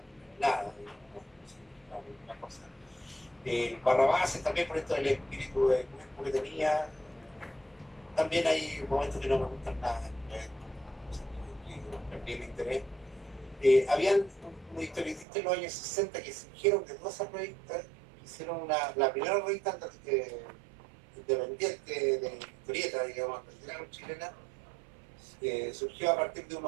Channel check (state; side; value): drops out; left; at 15.2 s